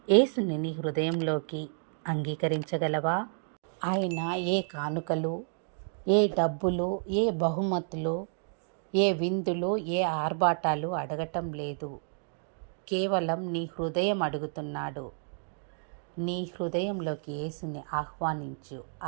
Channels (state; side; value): silent; left; digital silence